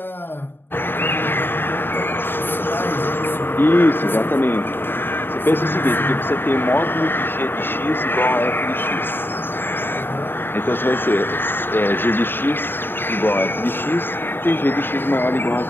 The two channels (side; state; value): right; late; 0.099 ms